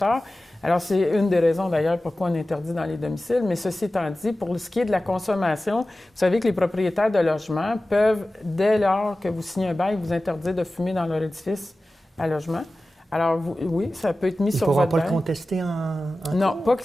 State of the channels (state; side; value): normal; both; correlation 0.96